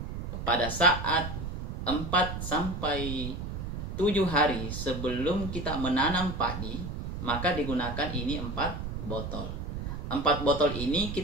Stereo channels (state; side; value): noise; right; rumble, 5 dB below the sound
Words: Pada saat 4 sampai 7 hari sebelum kita menanam padi, maka digunakan ini 4 botol. 4 botol ini